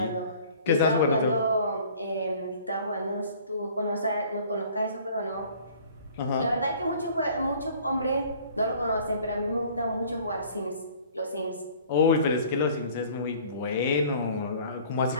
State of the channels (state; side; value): inverted; both; correlation -0.52